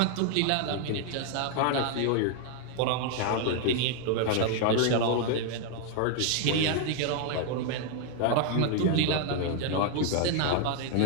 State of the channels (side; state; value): both; different; correlation 0.00